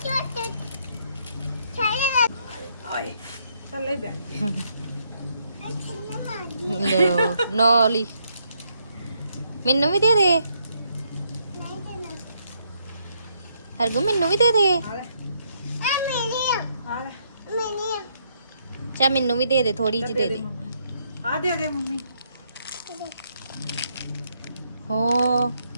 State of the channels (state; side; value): inverted; both; correlation -0.74